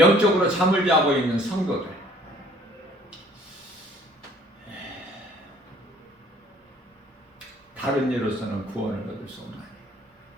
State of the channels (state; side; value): normal; both; correlation 0.57